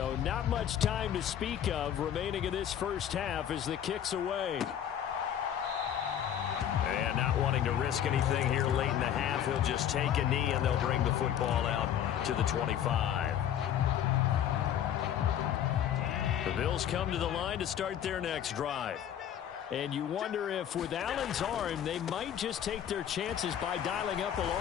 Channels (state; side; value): quieter; right; 10.0 dB